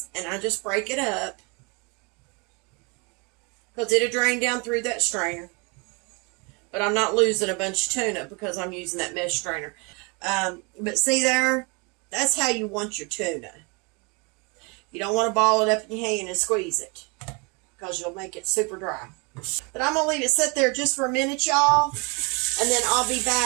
and I just break it up because it'll drain down through that strainer. But I'm not losing a bunch of tuna because I'm using that mesh strainer. But see there, that's how you want your tuna. You don't want to ball it up in your hand and squeeze it because you'll make it super dry. But I'm going to leave it sit there just for a minute, y'all. And then I'll be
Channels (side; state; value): left; quieter; 30.8 dB